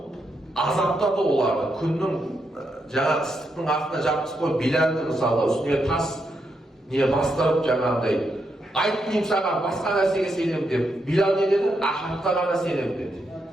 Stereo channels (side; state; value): both; normal; correlation 0.81